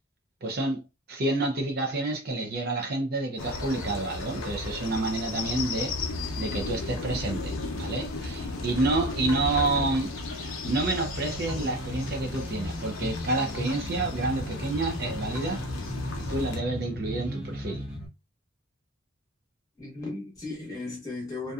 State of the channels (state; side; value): normal; both; correlation 0.35